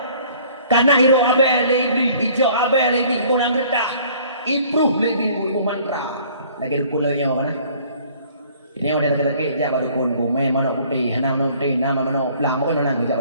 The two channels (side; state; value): both; inverted; correlation -0.55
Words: Karena hiro abe lebih hijau abe lebih kurang getah. Improve lebih ibu mantra. Lagi dukun lagi yang mana? Ini udah dekat-dekat jak baru dukun. Main mana putih, nama putih, nama mana pelang pun mana jak